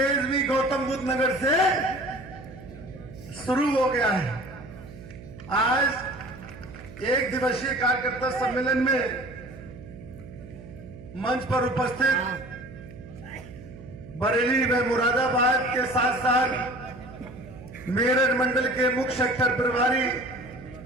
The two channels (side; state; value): right; noise; hum, 16 dB below the sound